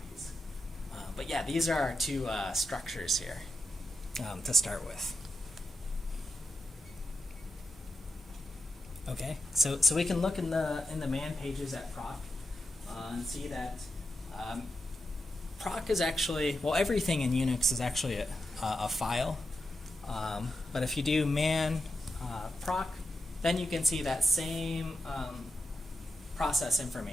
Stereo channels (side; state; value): both; normal; correlation 0.88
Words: But yeah, these are our two structures here to start with. Okay, so we can look in the man pages at proc and see that proc is actually, well, everything in Unix is actually a file. But if you do man proc, then you can see that same process